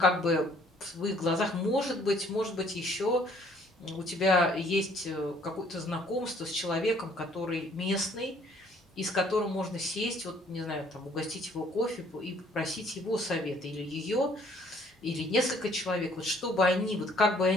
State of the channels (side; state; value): both; normal; correlation 0.61